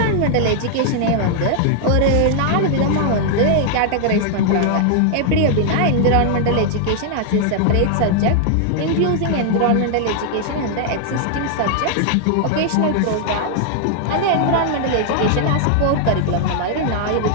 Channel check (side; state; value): both; different; correlation -0.01